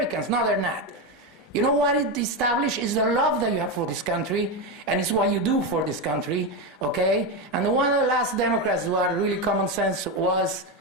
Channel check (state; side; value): normal; both; correlation 0.12